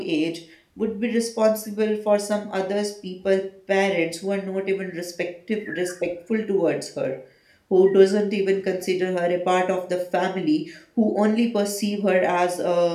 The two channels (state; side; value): identical; both; correlation 1.00